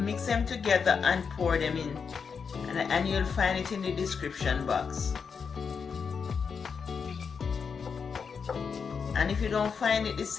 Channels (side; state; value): right; quieter; 6.0 dB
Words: them together and pour them in, and you'll find it in the description box. And if you don't find it the